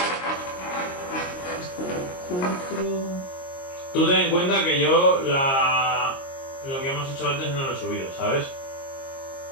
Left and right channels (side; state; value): right; late; 22 ms